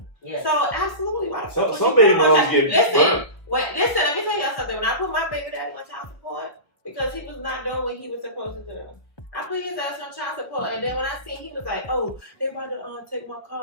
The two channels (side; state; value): right; late; 1.4 ms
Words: Yes. So absolutely, why the fuck would Some you baby put him on moms child- get listen. burnt. Listen, let me tell y'all something. When I put my baby daddy on child support because he was not doing what he was supposed to do, I put his ass on child support, and then when I seen he was like, "Oh, they about to take my car